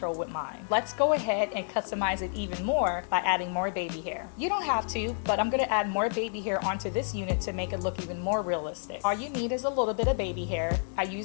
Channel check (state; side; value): silent; right; digital silence